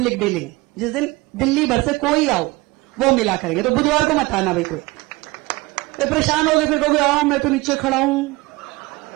डीलिंग, जिस दिन दिल्ली भर से कोई आओ वो मिला करेंगे। तो बुधवार को मत आना भाई, कोई परेशान हो गए फिर कहोगे हाँ मैं तो नीचे खड़ा हूं,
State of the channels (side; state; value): left; quieter; 22.4 dB